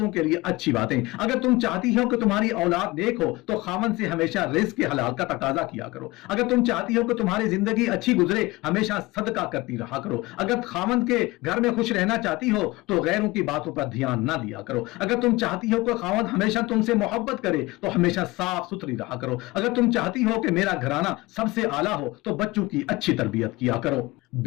کے لیے اچھی باتیں۔ اگر تم چاہتی ہو کہ تمہاری اولاد نیک ہو تو خاوند سے ہمیشہ رزق کے حلال کا تقاضا کیا کرو۔ اگر تم چاہتی ہو کہ تمہاری زندگی اچھی گزرے ہمیشہ صدقہ کرتی رہا کرو۔ اگر خاوند کے گھر میں خوش رہنا چاہتی ہو تو غیروں کی باتوں پر دھیان نہ دیا کرو۔ اگر تم چاہتی ہو کہ خاوند ہمیشہ تم سے محبت کرے تو ہمیشہ صاف ستھری رہا کرو۔ اگر تم چاہتی ہو کہ میرا گھرانہ سب سے اعلیٰ ہو تو بچوں کی اچھی تربیت کیا کرو۔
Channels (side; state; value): right; quieter; 21.2 dB